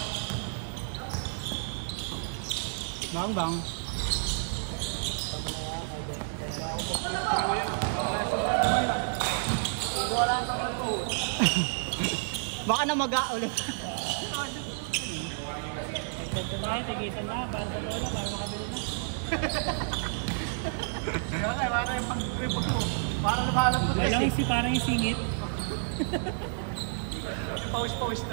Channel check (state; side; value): silent; left; digital silence